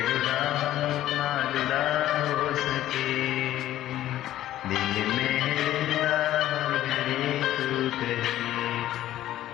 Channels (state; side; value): quieter; right; 13.4 dB